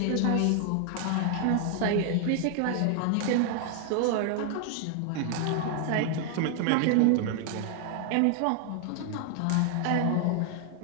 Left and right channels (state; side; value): different; both; correlation 0.00